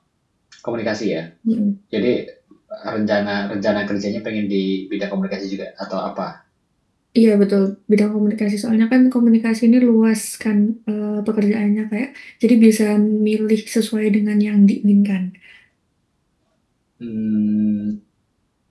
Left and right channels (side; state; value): both; identical; correlation 1.00